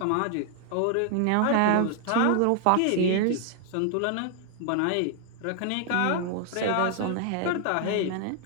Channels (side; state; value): both; different; correlation 0.00